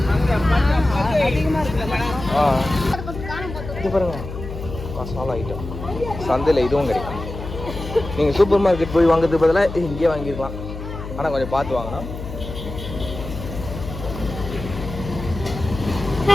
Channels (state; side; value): noise; left; hum, 9 dB below the sound